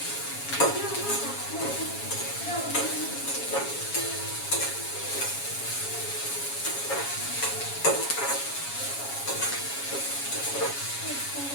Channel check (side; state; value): right; late; 7.2 ms